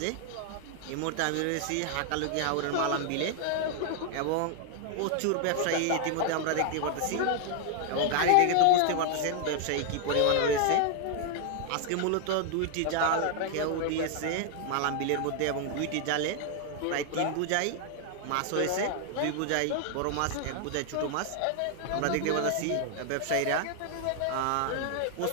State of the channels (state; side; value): different; both; correlation 0.00